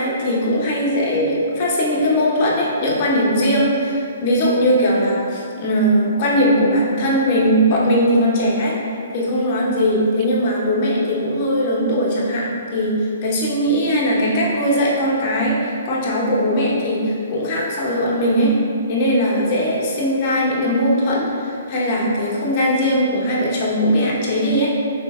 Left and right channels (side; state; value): both; inverted; correlation -0.46